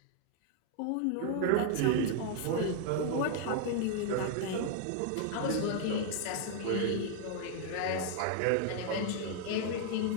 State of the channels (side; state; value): both; different; correlation 0.00